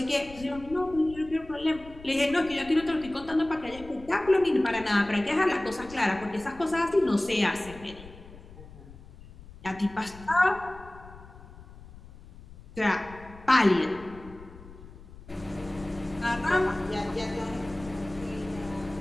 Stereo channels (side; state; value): left; noise; rumble, 18 dB below the sound